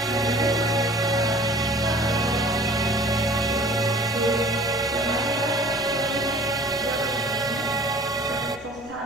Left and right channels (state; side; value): noise; left; rumble, 23 dB below the sound